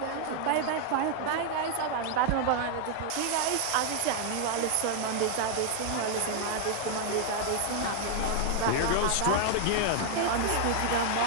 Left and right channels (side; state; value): both; different; correlation 0.00